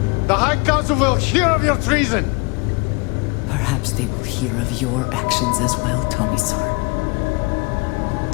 The High Council will hear of your treason. Perhaps they will hear of your actions as well, Tomisar.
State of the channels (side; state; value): right; quieter; 29.1 dB